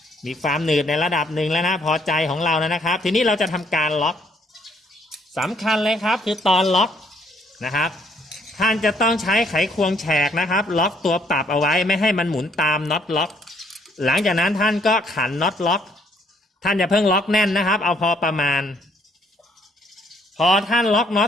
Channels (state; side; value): normal; both; correlation 0.67